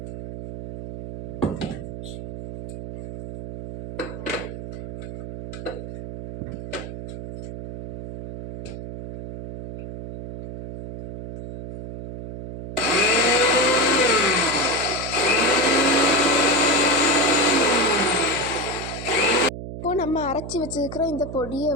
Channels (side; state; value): right; noise; hum, 9 dB below the sound